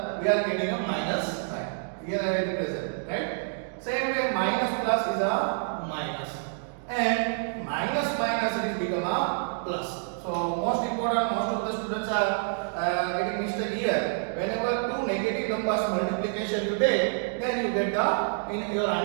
we are getting a minus sign. Here I represent, right? Same way minus plus is a minus, and minus minus it is become a plus. So most important, most of the students are getting mistake here. Whenever two negative numbers multiplication you take, then you get the, in your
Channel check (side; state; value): left; silent; 59 dB below the other